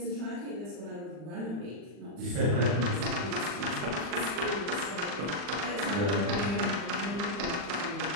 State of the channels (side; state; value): left; late; 40 ms